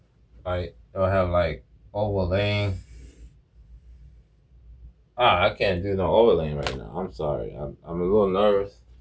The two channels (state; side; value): identical; both; correlation 1.00